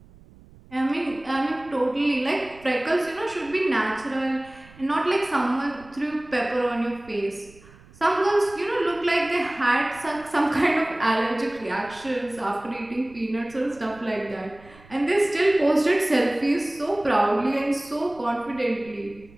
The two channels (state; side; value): noise; right; rumble, 24 dB below the sound